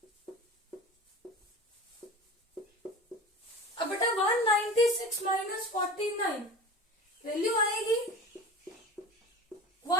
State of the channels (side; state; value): both; normal; correlation 0.35